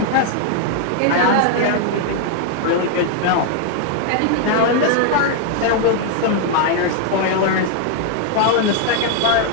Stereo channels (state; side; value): different; both; correlation 0.00